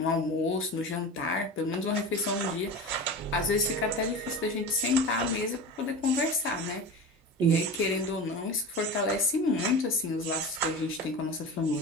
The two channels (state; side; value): normal; both; correlation 0.30